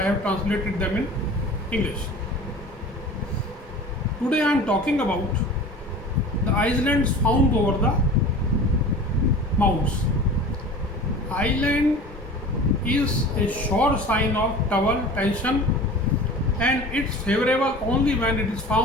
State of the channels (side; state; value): both; normal; correlation 0.39